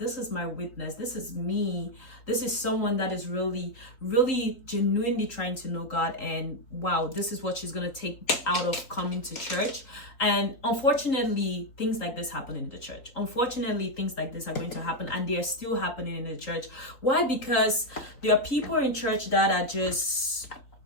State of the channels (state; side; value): late; right; 3.9 ms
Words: is my witness, this is me, this is someone that is really, really genuinely trying to know God, and wow, this is what she's gonna take out of coming to church. And unfortunately, things like this happen in the church. Unfortunately, things like this are going to happen, and they are still happening in the church. Why? Because there are people in church that are just